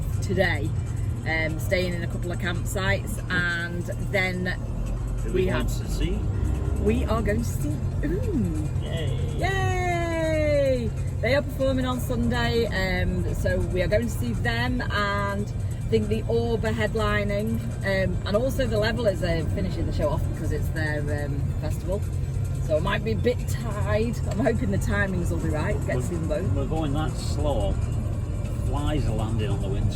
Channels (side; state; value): both; identical; correlation 1.00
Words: today, staying in a couple of campsites, and then we are going to see Oon. Yay! Yay! They are performing on Sunday, so we are going to see them, and I think the Orb are headlining, and also the Levelers are finishing the show off because it's their festival. So it might be a bit tight. I'm hoping the timings will be right. Get to see them both. We're going that slow. Flies are landing on the